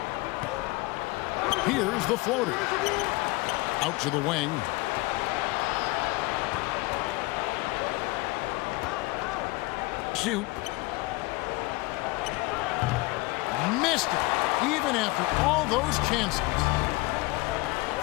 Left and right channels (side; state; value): right; quieter; 22.7 dB